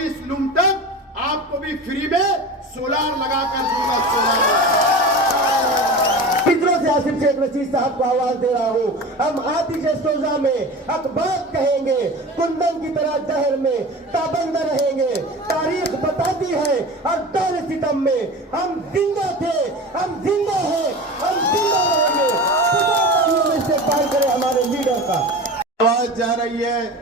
लूम तक आपको भी फ्री में सोलार लगाकर दूंगा। सोलार फिक्रों से आसिफ शेख रशीद साहब को आवाज दे रहा हूँ। हम आतिश सोजा में अखबार कहेंगे, कुंदन की तरह जहर में ताबंद रहेंगे। तारीख बताती है हर दौर सितम में हम जिंदा थे, हम जिंदा हैं, हम जिंदा रहेंगे। इस्तेमाल करें हमारे लीडर का। आवाज जा रही है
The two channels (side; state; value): both; normal; correlation 0.32